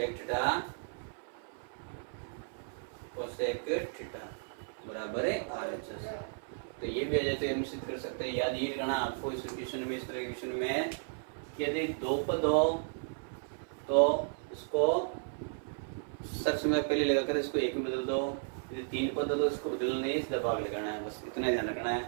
theta cosec theta बराबर है RHS। तो ये भी आ जाए तो निश्चित कर सकते हैं। याद ये करना आपको इस क्वेश्चन में, इस तरह के क्वेश्चन में कि यदि 2 पद हो तो इसको सब समय पहले लगाकर इसको 1 में बदल दो, यदि 3 पद हो तो इसको बदलना नहीं, सीधा भाग लगाना है, बस इतना ध्यान रखना है।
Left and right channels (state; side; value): silent; left; 55 dB below the other